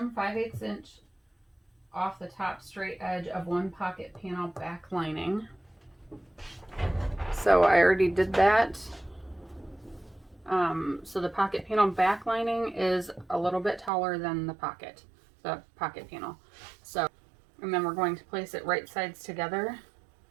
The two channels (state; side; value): drops out; left; at 13.9 s